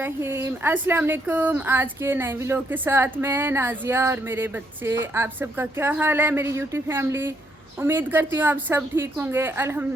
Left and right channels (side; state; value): both; normal; correlation 0.74